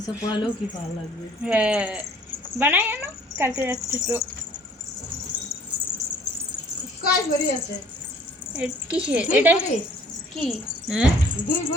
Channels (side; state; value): both; normal; correlation 0.55